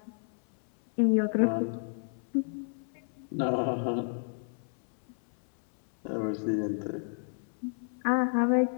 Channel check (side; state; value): right; silent; 57 dB below the other